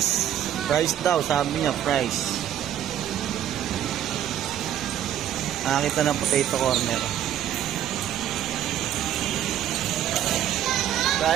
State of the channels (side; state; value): left; quieter; 10.9 dB